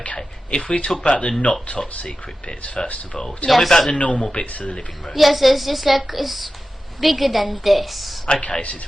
if we talk about the not top secret bits first of all, tell me about the normal bits of the living room. Yes, it's just like, it's bigger than this. Okay, so it's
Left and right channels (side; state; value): both; normal; correlation 0.93